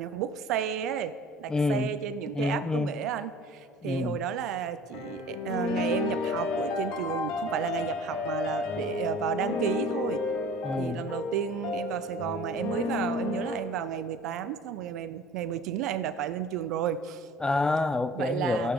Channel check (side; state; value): both; normal; correlation 0.46